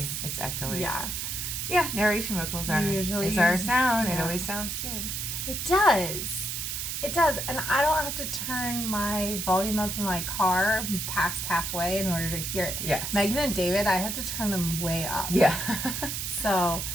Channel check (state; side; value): noise; right; hiss, 3 dB below the sound